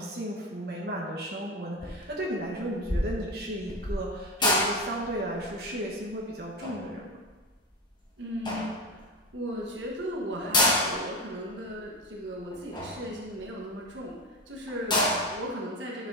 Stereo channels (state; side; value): normal; both; correlation 0.20